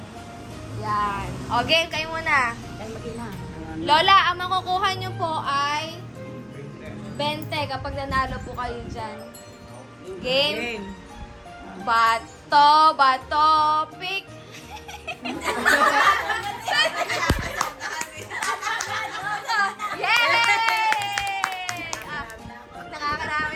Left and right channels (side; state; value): both; identical; correlation 1.00